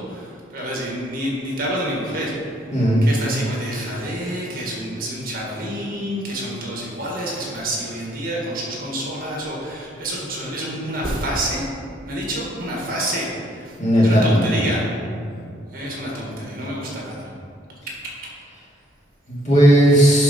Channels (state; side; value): normal; both; correlation 0.66